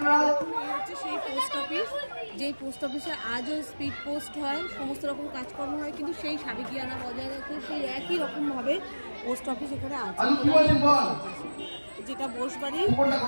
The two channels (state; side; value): inverted; both; correlation -1.00